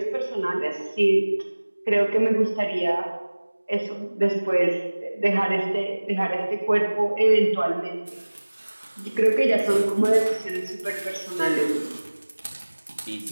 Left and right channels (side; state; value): both; inverted; correlation -1.00